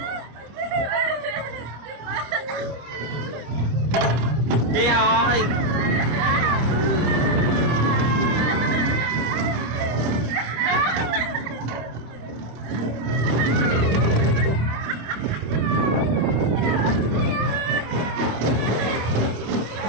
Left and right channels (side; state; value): left; late; 25 ms